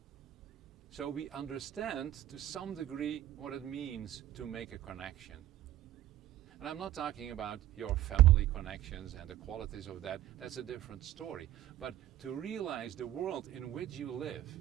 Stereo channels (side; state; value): left; quieter; 13.5 dB